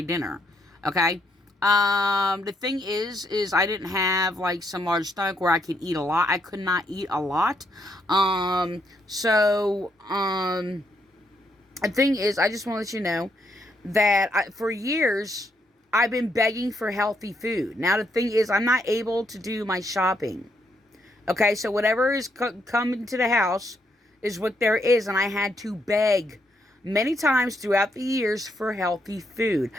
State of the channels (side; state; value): both; normal; correlation 0.76